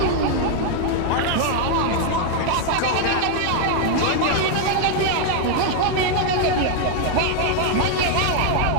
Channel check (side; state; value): both; different; correlation 0.00